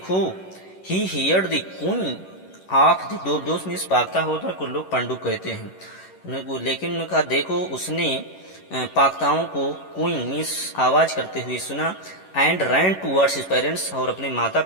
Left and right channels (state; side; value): late; right; 11 ms